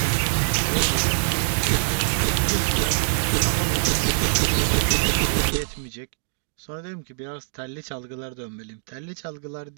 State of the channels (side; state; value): left; silent; digital silence